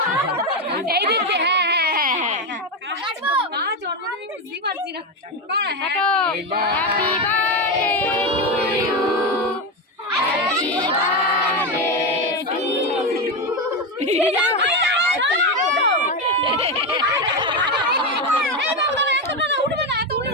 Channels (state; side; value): normal; both; correlation 0.13